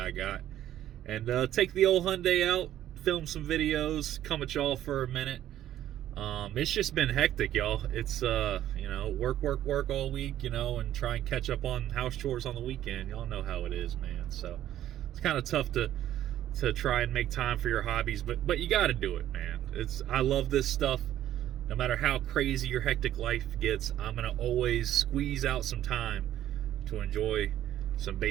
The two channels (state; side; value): quieter; left; 12.2 dB